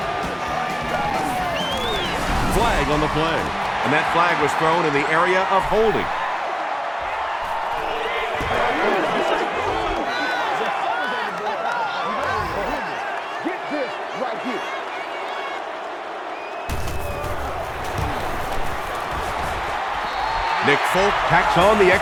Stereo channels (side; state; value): both; identical; correlation 1.00